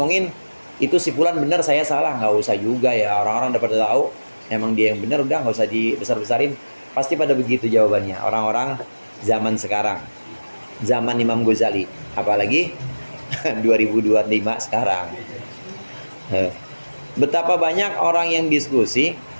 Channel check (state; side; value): inverted; both; correlation -1.00